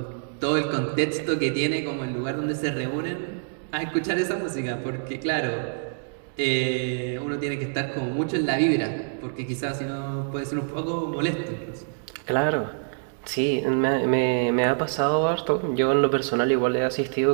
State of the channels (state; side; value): silent; left; digital silence